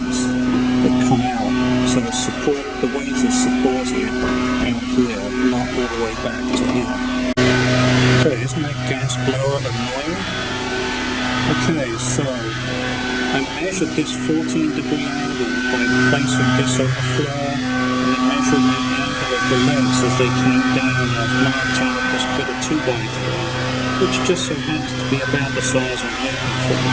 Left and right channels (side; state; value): both; identical; correlation 1.00